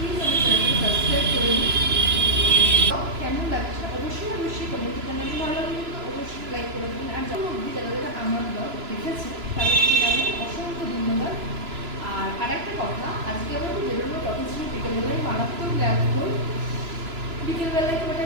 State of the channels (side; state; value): left; late; 3.0 ms